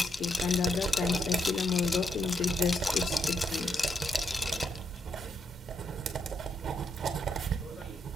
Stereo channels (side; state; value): both; normal; correlation 0.78